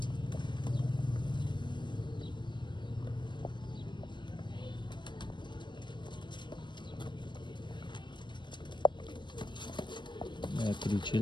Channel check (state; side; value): late; right; 0.22 ms